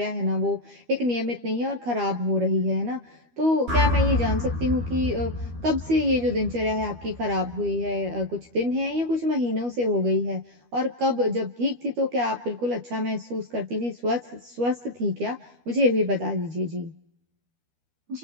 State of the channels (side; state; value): left; late; 12 ms